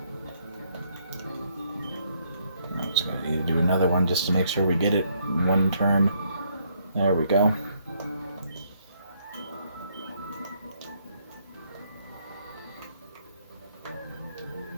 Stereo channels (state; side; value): inverted; both; correlation -0.70